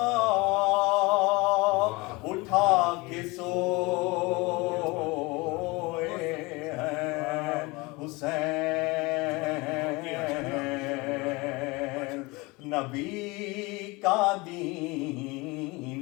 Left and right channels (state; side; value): quieter; right; 24.4 dB